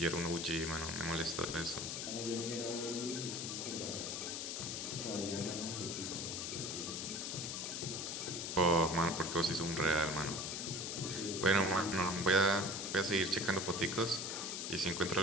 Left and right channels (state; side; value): noise; left; hiss, 3 dB below the sound